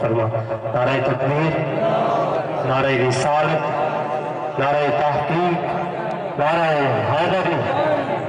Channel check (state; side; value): identical; both; correlation 1.00